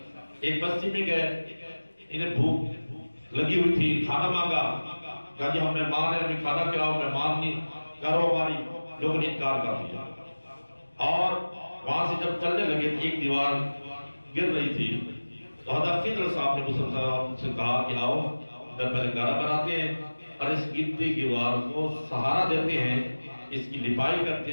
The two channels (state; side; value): inverted; both; correlation -1.00